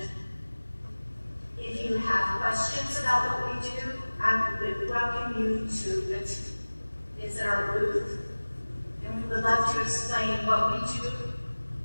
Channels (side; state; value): both; inverted; correlation -1.00